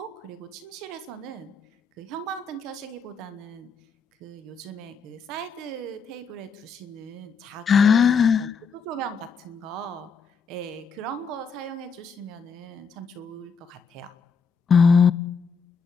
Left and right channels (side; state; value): right; quieter; 5.3 dB